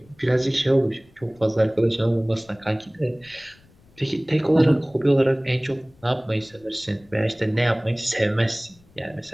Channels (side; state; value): left; noise; rumble, 29 dB below the sound